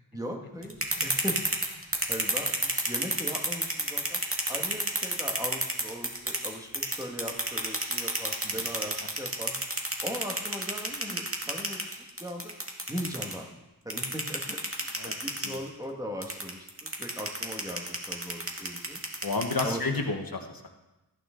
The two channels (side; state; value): both; normal; correlation 0.12